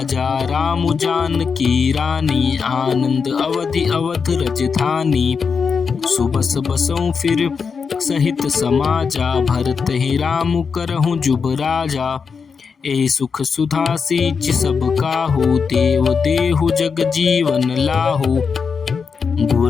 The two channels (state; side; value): quieter; right; 5.7 dB